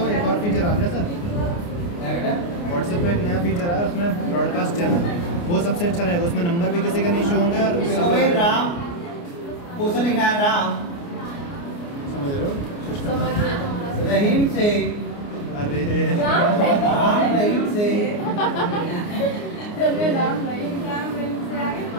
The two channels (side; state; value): right; late; 29 ms